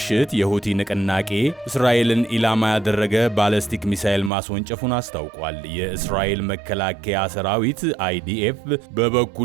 የሁቲ ንቅናቄ እስራኤልን ኢላማ ያደረገ ባሊስቲክ ሚሳኤል ማስወንጨፉን አስታውቋል። የእስራኤል መከላከያ ሰራዊት IDF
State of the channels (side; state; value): left; drops out; at 4.3 s